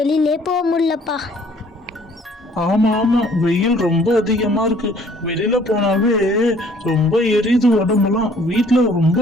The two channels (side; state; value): both; normal; correlation 0.58